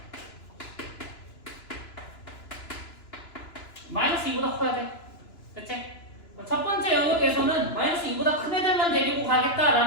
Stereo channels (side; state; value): right; late; 2.9 ms